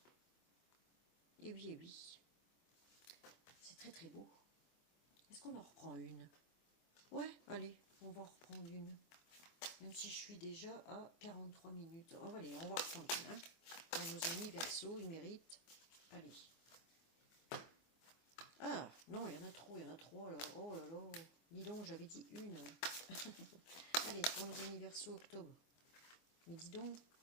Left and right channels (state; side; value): late; right; 24 ms